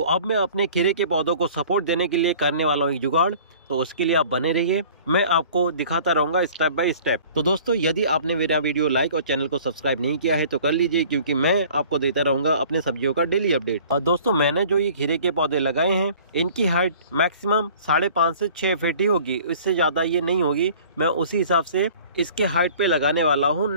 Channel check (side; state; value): both; inverted; correlation -0.49